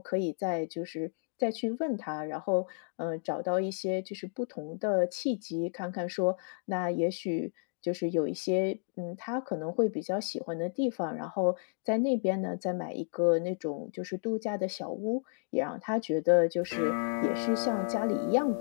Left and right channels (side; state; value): right; silent; digital silence